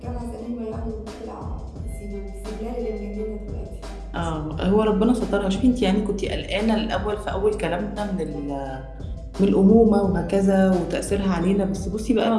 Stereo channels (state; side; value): identical; both; correlation 1.00